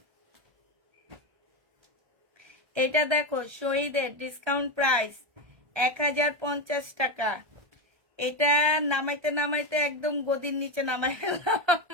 এটা দেখো শহীদের ডিসকাউন্ট প্রাইস 1050 টাকা। এটা নামাইতে নামাইতে একদম গদির নিচে নামাই ফেললাম।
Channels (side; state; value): left; late; 1.2 ms